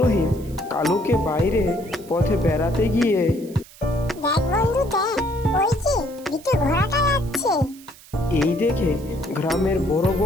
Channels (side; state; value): right; noise; hiss, 22 dB below the sound